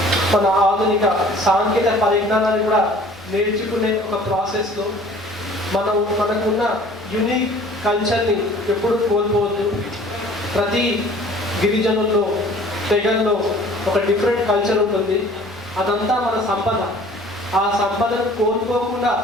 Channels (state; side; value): noise; left; rumble, 28 dB below the sound